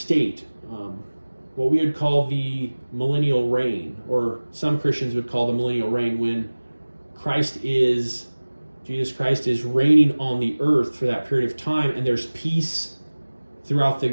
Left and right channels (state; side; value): inverted; both; correlation -1.00